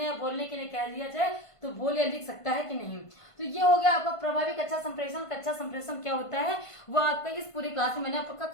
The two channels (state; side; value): late; right; 1.5 ms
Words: या बोलने के लिए कह दिया जाए तो बोल या लिख सकता है कि नहीं। तो ये हो गया आपका प्रभावी कक्षा संप्रेषण। कक्षा संप्रेषण क्या होता है वो आपका इस पूरी क्लास में मैंने आपका